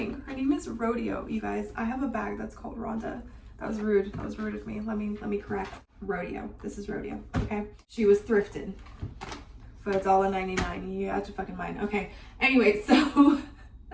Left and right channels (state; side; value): identical; both; correlation 1.00